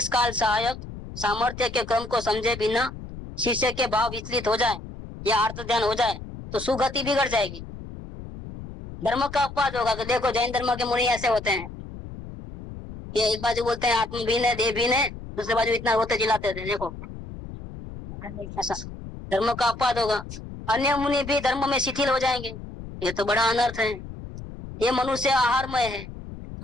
काल सहायक सामर्थ्य के क्रम को समझे बिना शिष्य के भाव विचलित हो जाए या अर्थ ध्यान हो जाए तो सुगति बिगड़ जाएगी। धर्म का अपवाद होगा कि देखो जैन धर्म के मुनि ऐसे होते हैं, ये एक बाजू बोलते हैं आत्म भीन है देह भीन है, दूसरे बाजू इतना रोते चिल्लाते थे। देखो ऐसा धर्म का अपवाद होगा। अन्य मुनि भी धर्म में शिथिल हो जाएंगे। ये तो बड़ा अनर्थ है। ये मनुष्य आहारमय है,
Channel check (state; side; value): noise; left; rumble, 12 dB below the sound